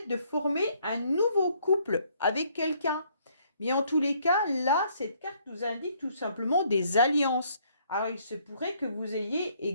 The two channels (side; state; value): both; inverted; correlation -0.66